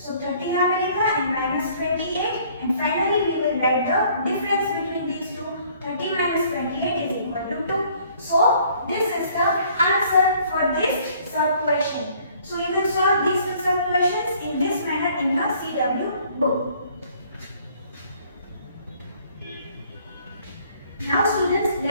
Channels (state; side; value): inverted; both; correlation -0.59